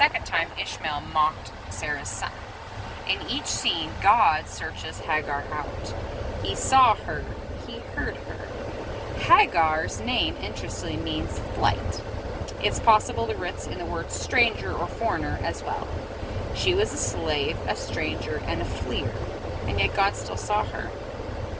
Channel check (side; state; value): both; identical; correlation 1.00